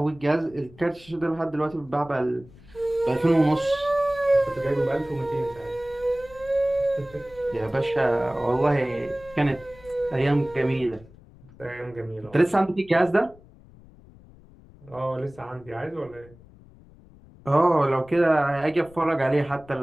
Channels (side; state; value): left; noise; rumble, 23 dB below the sound